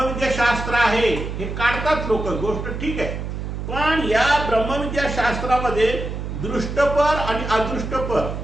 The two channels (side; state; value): right; noise; hum, 6 dB below the sound